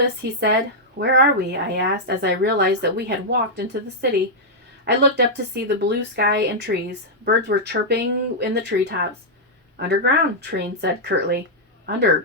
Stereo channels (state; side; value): normal; both; correlation -0.07